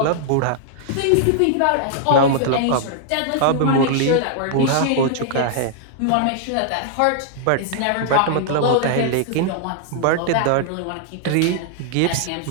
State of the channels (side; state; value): both; different; correlation -0.01